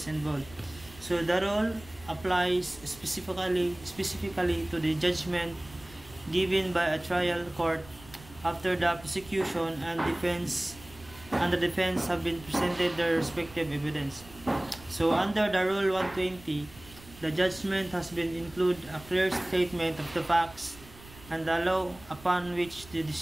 involved. So the rule applies specifically to the judgment given by a trial court after the prosecution and the defense have been presented their respective evidence. So under the Rule 120, the judgment has been include a clear statement of the facts and the law upon which the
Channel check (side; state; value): right; noise; rumble, 20 dB below the sound